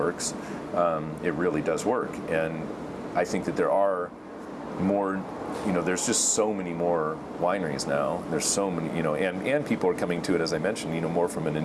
it really does work. And I think that there are more, there's just so many more wineries now. There's so many, and people are coming to it, as I mentioned, more from an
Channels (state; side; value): identical; both; correlation 1.00